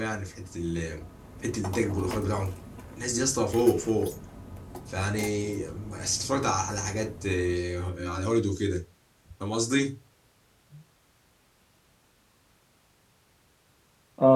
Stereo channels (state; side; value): identical; both; correlation 1.00